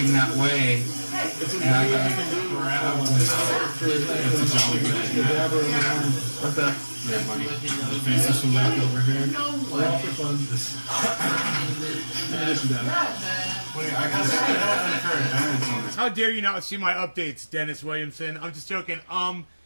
that way. And I got Okay. Faces from left over here. How dare you not see my updates, Dennis Williamson? I'm just joking. I'm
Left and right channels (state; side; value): inverted; both; correlation -1.00